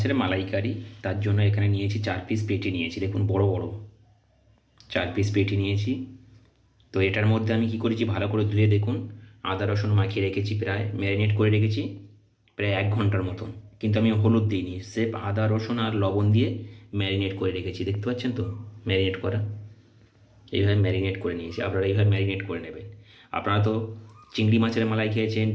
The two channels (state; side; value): identical; both; correlation 1.00